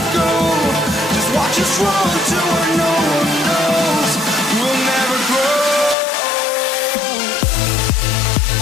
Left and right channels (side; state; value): right; drops out; at 6.0 s